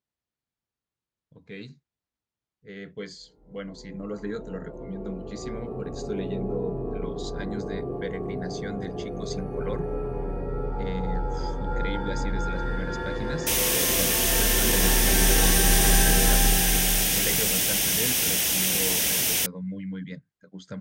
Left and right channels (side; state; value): both; identical; correlation 1.00